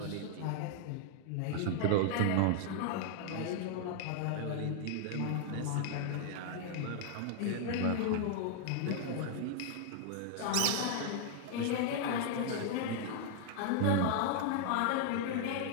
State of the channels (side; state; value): both; different; correlation -0.01